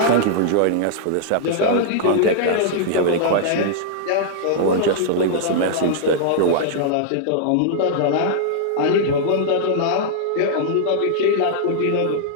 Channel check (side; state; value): both; different; correlation -0.01